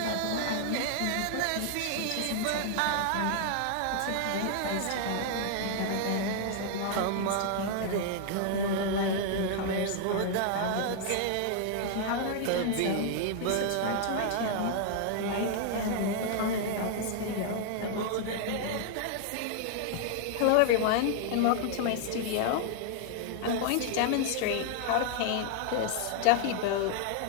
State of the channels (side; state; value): both; different; correlation 0.00